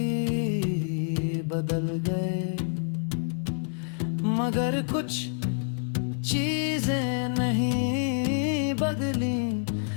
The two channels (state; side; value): silent; right; digital silence